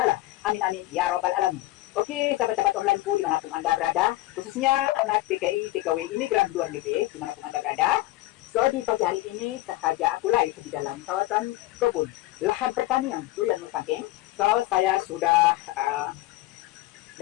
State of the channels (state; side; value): quieter; right; 17.5 dB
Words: Amin amin ya rabbal alamin. Oke, sahabat-sahabat onlineku dimanapun Anda berada, khususnya anak TKI, TKW imigran luar negeri dimanapun Anda berada. So, di pagi hari ini sengaja aku live di dalam kawasan kebun lahan pertanian durian Musangking. So, saya sudah